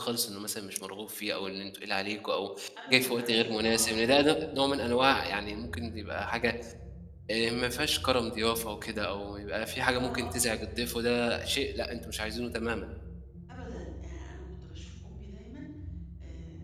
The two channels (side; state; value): both; identical; correlation 1.00